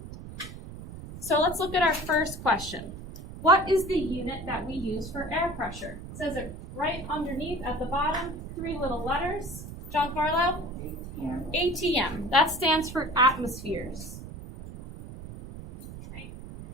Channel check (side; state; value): right; noise; rumble, 12 dB below the sound